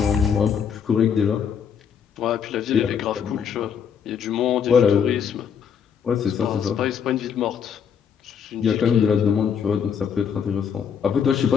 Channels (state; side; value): quieter; right; 7.4 dB